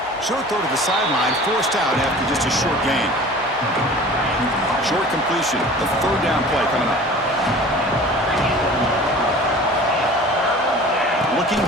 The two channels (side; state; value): both; normal; correlation 0.43